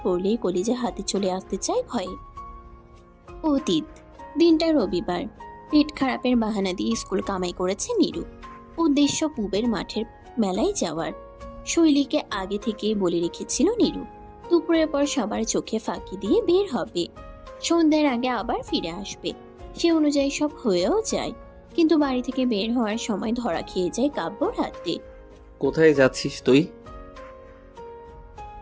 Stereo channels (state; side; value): identical; both; correlation 1.00